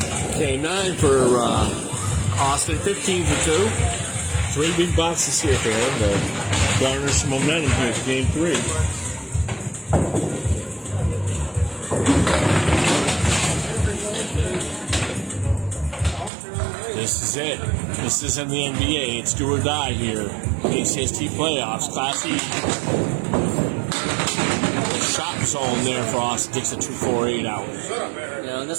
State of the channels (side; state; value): left; drops out; at 16.3 s